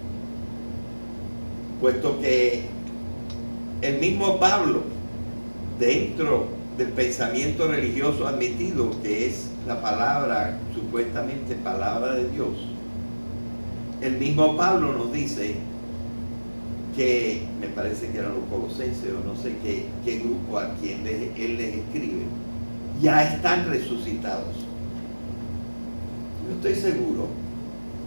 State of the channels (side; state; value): both; inverted; correlation -1.00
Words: puesto que el mismo Pablo, dentro del pensamiento religioso admitido, que es la palabra, supuestamente palabra de Dios, el mismo Pablo nos dice que, me parece que eran los colosenses o no sé qué grupo a quien él les escribe, ya están resucitados. Yo estoy seguro